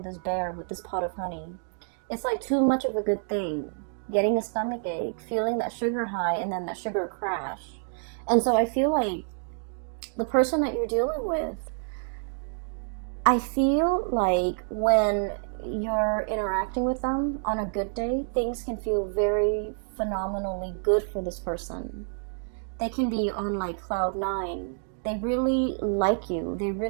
this bear with this pot of honey. It's like too much of a good thing. Getting a stomach ache, feeling that sugar high, and then that sugar crash. And so I feel like the person that you're dealing with, I feel like when you're interacting with them on a good day, things can feel very phenomenally good for this person. They can be on like cloud nine. They really like you. They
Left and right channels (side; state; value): left; silent; digital silence